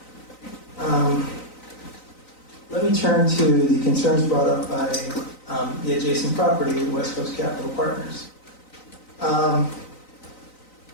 Let me turn to the concerns brought up by the adjacent property, West Coast Capital Partners.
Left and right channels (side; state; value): right; late; 3.9 ms